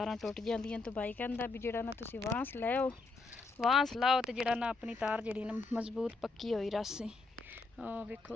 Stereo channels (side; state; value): right; quieter; 3.8 dB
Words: ਟੁੱਟ ਜਾਂਦੀਆਂ। ਤੇ ਬਾਈ ਕਹਿੰਦਾ ਵੀ ਜਿਹੜਾ ਨਾ ਤੁਸੀਂ ਵਾਂਸ ਲੈਓ, ਵਾਂਸ ਲਾਓ ਤੇ ਜਿਹੜਾ ਨਾ ਆਪਣੀ ਤਾਰ ਜਿਹੜੀ ਨਾ ਮਜ਼ਬੂਤ ਪੱਕੀ ਹੋਈ ਰਸੇ। ਵੇਖੋ